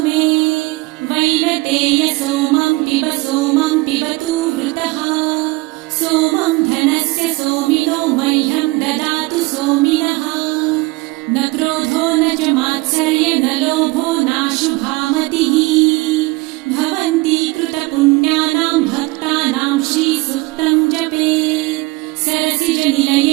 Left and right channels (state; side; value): quieter; left; 22.9 dB